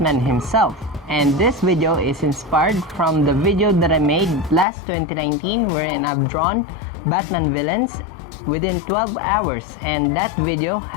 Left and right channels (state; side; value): drops out; right; at 4.7 s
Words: himself. And this video is inspired from the video that I made last 2019 wherein I've drawn Batman villains within 12 hours, and that video